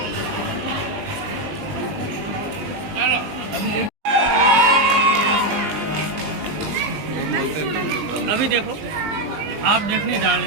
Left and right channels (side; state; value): left; late; 20 ms